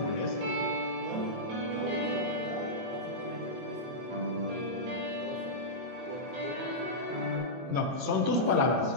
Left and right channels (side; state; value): left; late; 22 ms